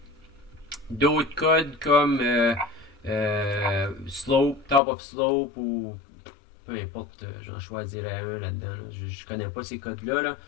d'autres codes comme Slope, Top of Slope ou peu importe, j'en choisirais un là-dedans. Là. Je connais pas ces codes-là. Là.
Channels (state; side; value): drops out; right; at 4.8 s